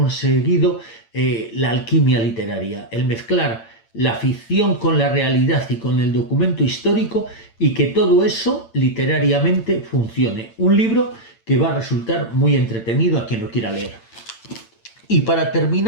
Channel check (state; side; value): late; right; 8.8 ms